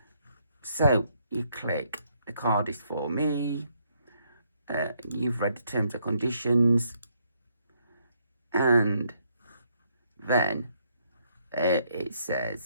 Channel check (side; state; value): both; inverted; correlation -0.72